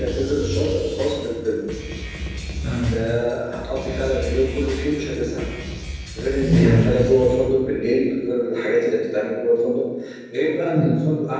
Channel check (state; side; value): identical; both; correlation 1.00